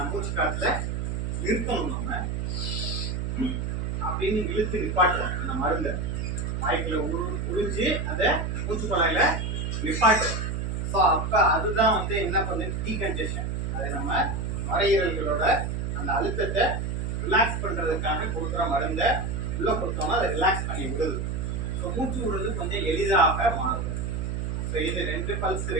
மூச்சு காற்றுல நிறுத்தணும். நம்ம அப்படின்னு இழுத்து நிப்பாட்டுறோம் அந்த மருந்தை வாய்க்குள்ள உறிஞ்சு அதை மூச்சு குழாயில நிப்பாட்டுறோம். ஸோ அப்போ அதுதான் வந்து என்ன பண்ணுது, டீகன்ஜெஷன். அது நம்ம நுரையீரல்களோட அந்த அழுத்தத்தை ரிலாக்ஸ் பண்ணுறதுக்காக கொடுக்குற மருந்தை உள்ளே கொடுத்தோம்னா அதை ரிலாக்ஸ் பண்ணி விடுது. ஸோ மூச்சு விடுறது கொஞ்சம் எளிதாக மாறுது. ஸோ இது 2 பல்ஸ்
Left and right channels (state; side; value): noise; right; hum, 2 dB below the sound